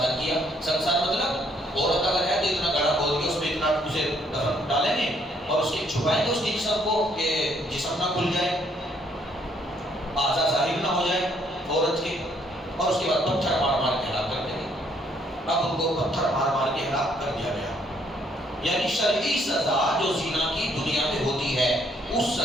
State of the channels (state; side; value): normal; both; correlation 0.68